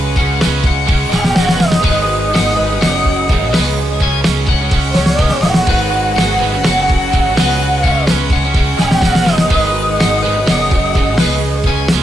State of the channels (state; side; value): normal; both; correlation 0.85